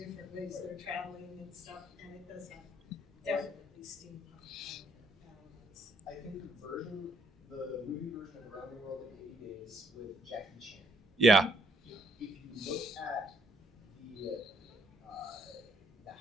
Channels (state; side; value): normal; both; correlation 0.69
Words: ways they're traveling and stuff, and it does have definitely steampunk elements. I Yeah. If you look at the